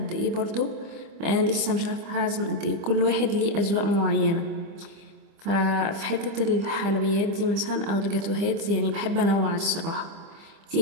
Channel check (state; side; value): late; left; 25 ms